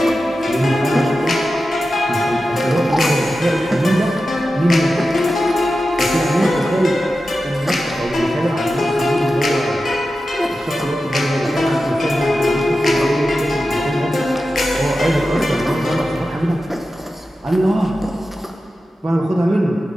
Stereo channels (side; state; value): both; normal; correlation 0.92